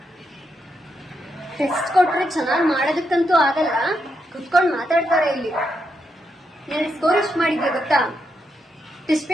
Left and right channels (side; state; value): both; normal; correlation 0.82